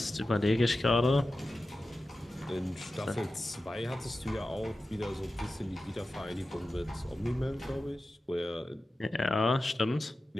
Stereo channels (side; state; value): both; normal; correlation 0.93